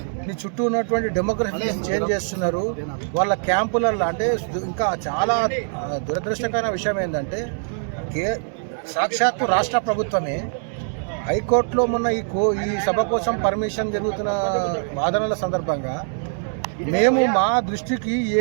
నీ చుట్టూ ఉన్నటువంటి డెమోగ్రఫీని చేంజ్ చేస్తున్నారు. వాళ్ళ క్యాంపులలో అంటే ఇంకా చాలా దురదృష్టకరమైన విషయం ఏంటంటే సాక్షాత్తు రాష్ట్ర ప్రభుత్వమే హైకోర్టులో మొన్న ఈ సభ కోసం పర్మిషన్ జరుగుతున్న వాదనల సందర్భంగా మేము మా దృష్టికి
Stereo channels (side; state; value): left; silent; digital silence